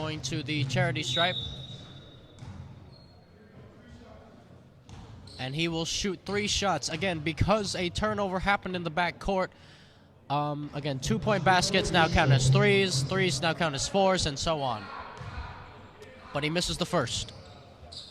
to the charity stripe. And he will shoot 3 shots. Again, because a turnover happened in the back court. Again, 2-point baskets now count as 3s. 3s now count as 4s, and so on. But he misses the first.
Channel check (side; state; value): both; identical; correlation 1.00